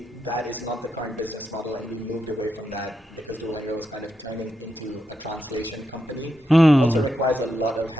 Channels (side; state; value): both; normal; correlation 0.84